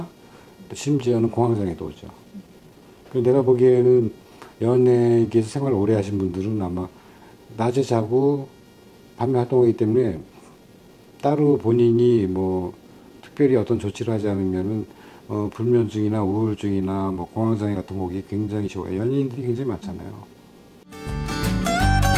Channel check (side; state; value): both; identical; correlation 1.00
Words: 심지어는 공황장애도 오죠. 내가 보기에는 연예계에서 생활을 오래 하신 분들은 아마 낮에 자고 밤에 활동하기 때문에 따로 본인이 뭐 특별히 어떤 조치를 하지 않으면은 불면증이나 우울증이나 뭐 공황장애 같은 거 오기 굉장히 쉬워요. 연예인들이 굉장히 많잖아요.